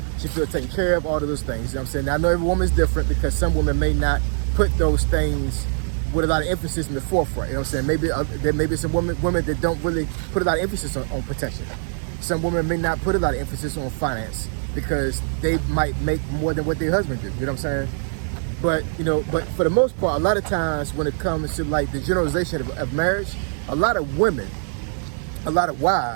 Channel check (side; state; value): left; silent; digital silence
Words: she feels taken care of, all of those things, you know what I'm saying? Now, I know every woman is different because some women may not put those things with a lot of emphasis in the forefront, you know what I'm saying? Maybe there may be some women that don't really put a lot of emphasis on protection. Some women may not put a lot of emphasis on finance because they might make more than what their husband do, you know what I'm saying? But, you know, but for the most part, a lot of times when it comes to like the generalization of marriage, a lot of women, a lot of